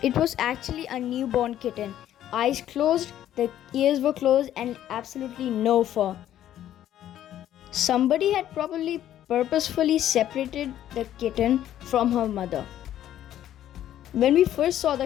It was actually a newborn kitten. Eyes closed, the ears were closed and absolutely no fur. Somebody had probably purposefully separated the kitten from her mother. When we first saw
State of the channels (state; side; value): quieter; right; 11.8 dB